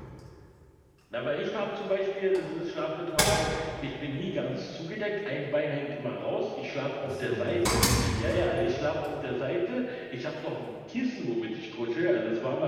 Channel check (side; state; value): both; identical; correlation 1.00